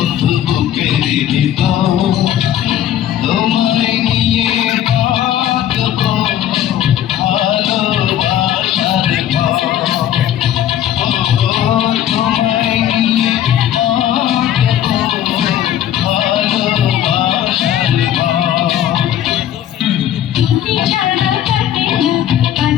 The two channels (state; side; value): quieter; right; 11.2 dB